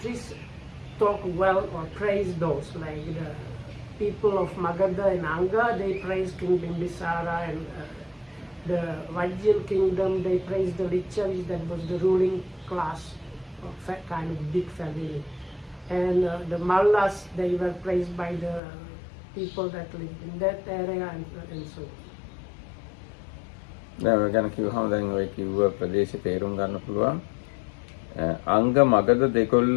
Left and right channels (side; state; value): right; drops out; at 18.6 s